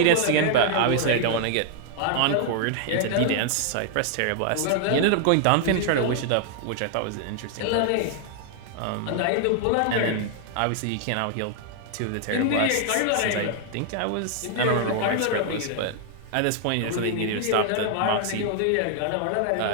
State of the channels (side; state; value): both; different; correlation 0.00